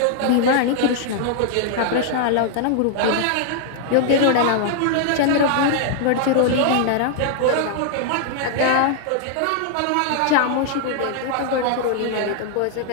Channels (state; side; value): different; both; correlation 0.00